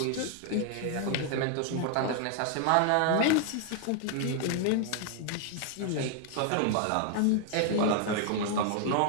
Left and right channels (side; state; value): both; different; correlation 0.00